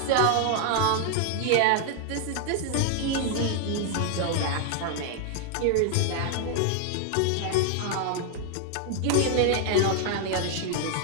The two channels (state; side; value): different; both; correlation 0.00